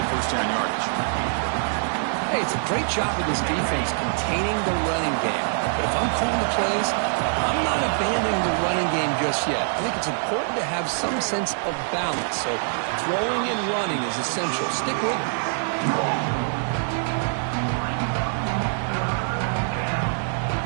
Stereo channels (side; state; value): left; silent; digital silence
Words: first down yardage. Hey, it's a great job of this defense containing the running game. But if I'm calling the plays, I'm not abandoning the running game just yet. I think it's important to have some sense of balance. So throwing and running is essential. Stick with it.